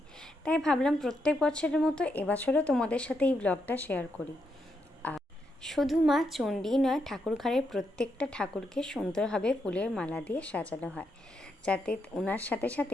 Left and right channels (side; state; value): both; normal; correlation 0.81